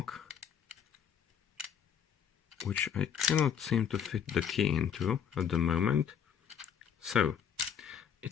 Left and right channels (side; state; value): right; quieter; 8.0 dB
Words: which I cannot seem to fit the key into at the moment. So